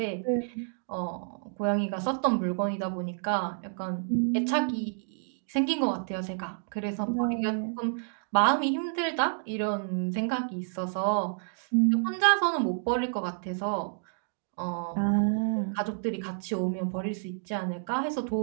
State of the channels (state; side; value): silent; left; digital silence